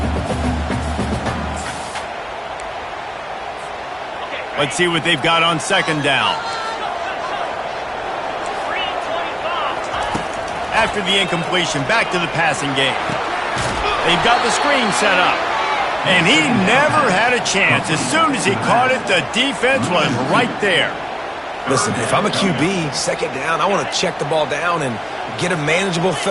Let's see what they've got on second down. After the incompletion, back to the passing game. They've got the screen set up. And he never had a chance. As soon as he caught it, the defense was right there. Listen, if I'm a QB, second down, I want to check the ball down and get a manageable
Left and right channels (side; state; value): both; identical; correlation 1.00